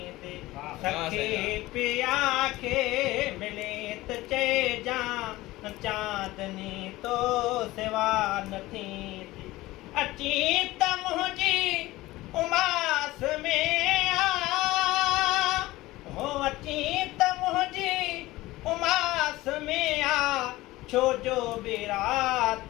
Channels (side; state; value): right; quieter; 18.4 dB